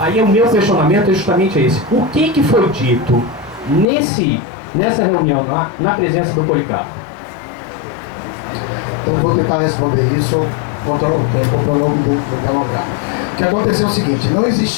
o meu questionamento é justamente esse: o que foi dito nessa reunião, na presença do Policarpo? Então vou tentar responder isso, controlar o tempo para não me delongar. O que aconteceu é o seguinte: não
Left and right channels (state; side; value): drops out; right; at 3.9 s